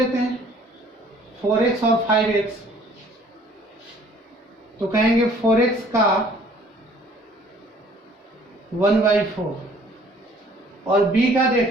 हैं 4x और 5x, तो कहेंगे 4x का 1/4 और b का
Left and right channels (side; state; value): both; normal; correlation 0.56